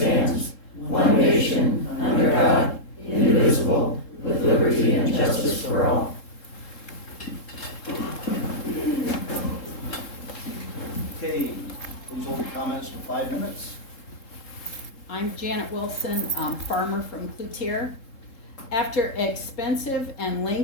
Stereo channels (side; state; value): right; late; 3.7 ms